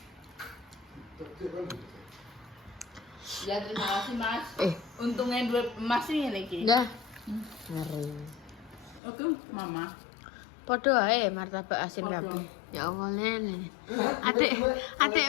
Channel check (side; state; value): right; drops out; at 9.0 s